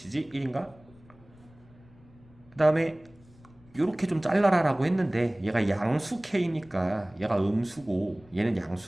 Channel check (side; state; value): left; noise; rumble, 26 dB below the sound